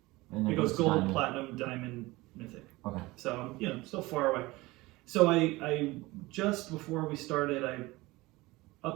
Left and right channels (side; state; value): left; quieter; 20.8 dB